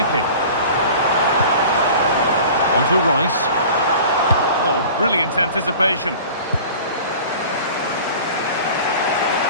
On to Rice. Oh, brilliant anticipation.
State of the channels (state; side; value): inverted; both; correlation -0.41